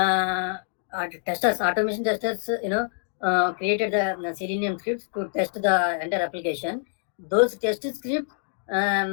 Testers, automation testers, created the Selenium scripts to test the entire application. Those test scripts,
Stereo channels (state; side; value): silent; right; digital silence